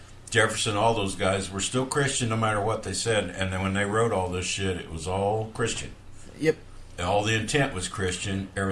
Jefferson, all those guys were still Christian no matter what they said. And then when they wrote all this shit, it was all Christian. Yep. And all the intent was Christian.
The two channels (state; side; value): identical; both; correlation 1.00